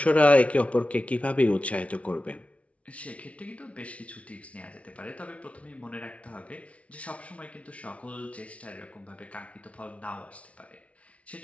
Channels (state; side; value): late; right; 0.064 ms